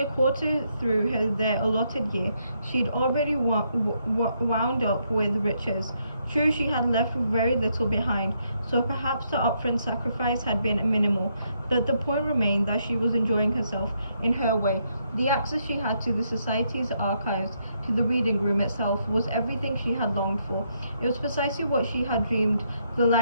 a quarter through their allotted year, she'd already wound up with riches. True, she had left very little behind, so perhaps the upfront sacrifice had been minimal, but the point remained that she was enjoying herself in her way. The access she had to the society's archives, to the reading room itself, was everything she had longed for. It was precisely what she had dreamed the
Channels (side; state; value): both; inverted; correlation -0.76